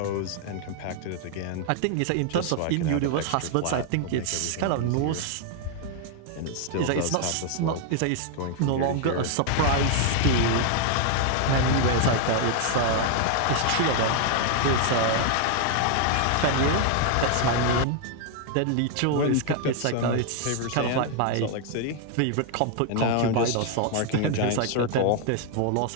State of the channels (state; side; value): different; both; correlation 0.00